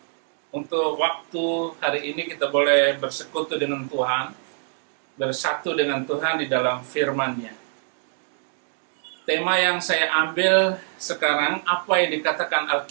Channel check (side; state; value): left; silent; digital silence